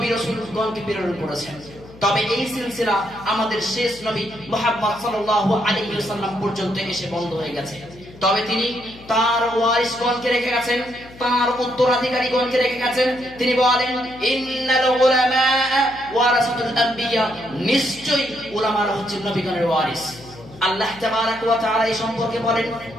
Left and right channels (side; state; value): left; noise; hum, 20 dB below the sound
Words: রাসূলগণকে প্রেরণ করেছেন। তবে এই সিলসিলা আমাদের শেষ নবী মুহাম্মদ সাল্লাল্লাহু আলাইহি ওয়াসাল্লাম পর্যন্ত এসে বন্ধ হয়ে গেছে। তবে তিনি তার ওয়ারিসগণকে রেখে গেছেন, তার উত্তরাধিকারীগণকে রেখে গেছেন। তিনি বলেন, ইন্নাল উলামা ওয়ারাসাতুল আম্বিয়া, নিশ্চয়ই উলামারা হচ্ছে নবীগণের ওয়ারিস। আল্লাহ তাবারক ওয়া তাআলা এই সম্পর্কে বলেন,